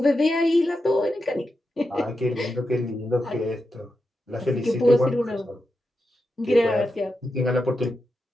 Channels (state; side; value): normal; both; correlation 0.88